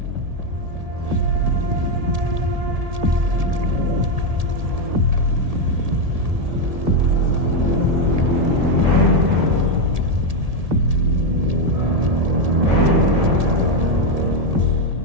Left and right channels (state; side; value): late; left; 1.7 ms